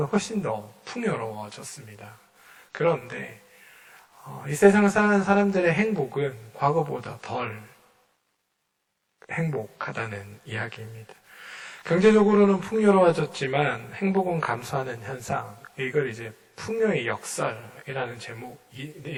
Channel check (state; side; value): identical; both; correlation 1.00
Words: 훨씬 더 풍요로워졌습니다. 그런데 이 세상을 살아가는 사람들의 행복은 과거보다 덜 행복하다는 이야기입니다. 경제적으로는 풍요로워졌지만 행복은 감소하는 현상, 이걸 이제 풍요의 역설이라는